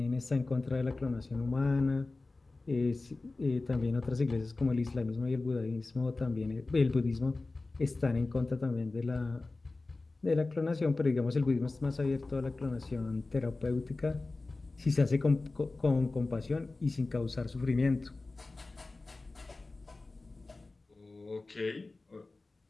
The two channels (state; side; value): quieter; right; 3.4 dB